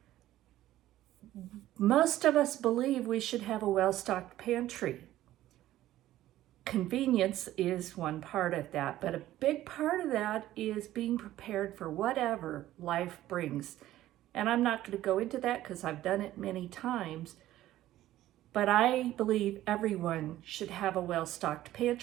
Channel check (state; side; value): quieter; left; 14.2 dB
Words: most of us believe we should have a well-stocked pantry. Convenience is one part of that, but a big part of that is being prepared for whatever life brings. And I'm not going to go into that because I've done it many times, but I believe everyone should have a well-stocked